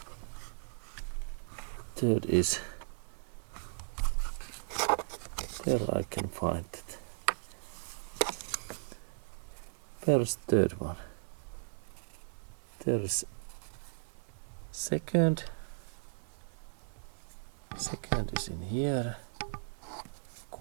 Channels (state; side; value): silent; left; 54 dB below the other